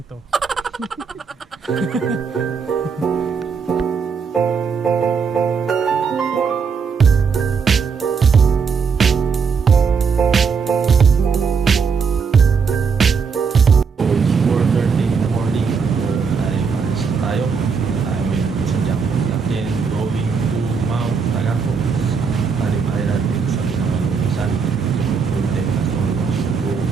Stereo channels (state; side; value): quieter; left; 5.7 dB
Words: to. Tayo may sadyang natin going to Mount Tagapo, Talim Island sa Binangonan, Rizal. It will take us almost